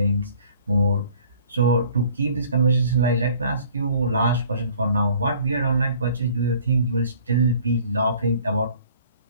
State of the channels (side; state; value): both; inverted; correlation -0.54